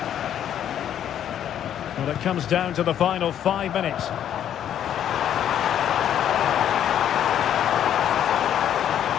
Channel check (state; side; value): quieter; right; 10.1 dB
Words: Well, it comes down to the final 5 minutes.